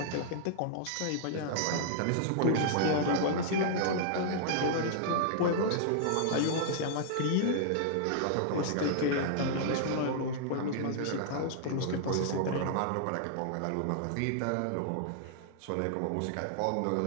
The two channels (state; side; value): different; both; correlation -0.01